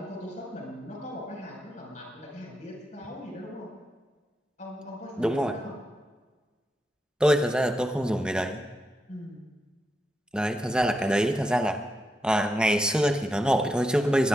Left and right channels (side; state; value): both; normal; correlation 0.84